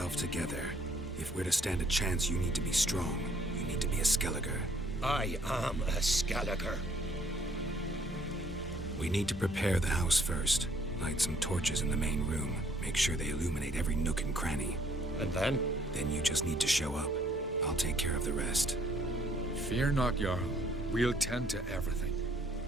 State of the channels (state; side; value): normal; both; correlation 0.63